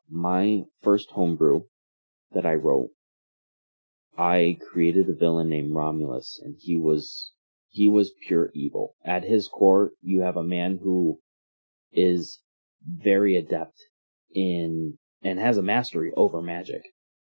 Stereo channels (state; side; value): inverted; both; correlation -1.00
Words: first homebrew that I wrote, I created a villain named Romulus, and he was pure evil. At his core, you have a man who is very adept in and has a mastery over magic,